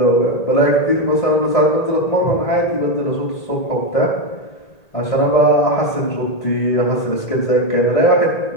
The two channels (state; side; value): late; right; 1.8 ms